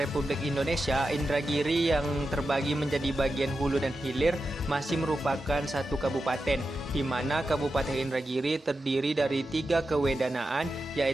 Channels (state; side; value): normal; both; correlation 0.90